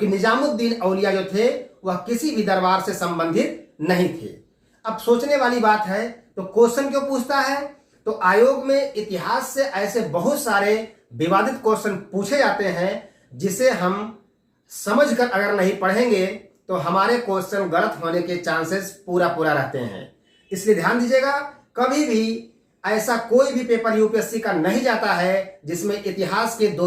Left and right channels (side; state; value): both; identical; correlation 1.00